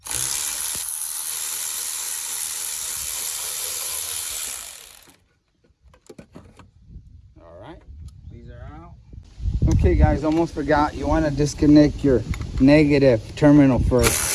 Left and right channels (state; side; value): identical; both; correlation 1.00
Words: All right, these are out. Okay guys, almost forgot, you want to disconnect your negative terminal first,